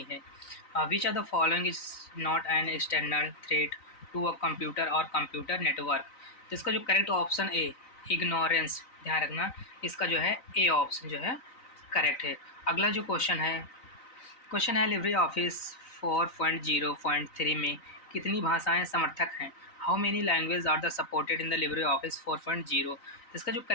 है। विच ऑफ द फॉलोइंग इज नॉट एन एक्सटर्नल थ्रेट टू अ कंप्यूटर और कंप्यूटर नेटवर्क। तो इसका जो करेक्ट ऑप्शन ए इग्नोरेंस, ध्यान रखना इसका जो है ए ऑप्शन जो है करेक्ट है। अगला जो क्वेश्चन है लिब्रे ऑफिस 4.0.3 में कितनी भाषाएं समर्थक हैं। हाउ मेनी लैंग्वेज आर द सपोर्टेड इन द लिब्रे ऑफिस 4.0। इसका जो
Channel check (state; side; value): late; right; 3.9 ms